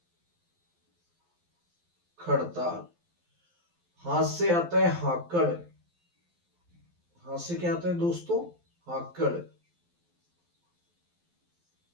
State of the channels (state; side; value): late; left; 12 ms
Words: खड़ताल। हाथ से आता है हाकड़। हाथ से क्या आता है दोस्तों? हाकड़।